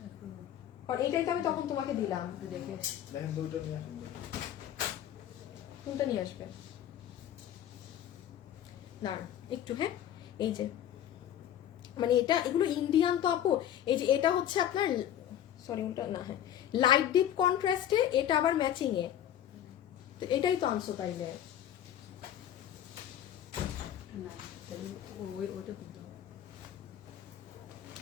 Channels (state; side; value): quieter; right; 10.8 dB